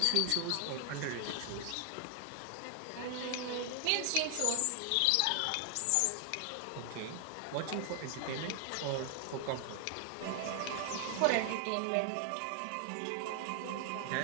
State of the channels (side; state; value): both; different; correlation 0.00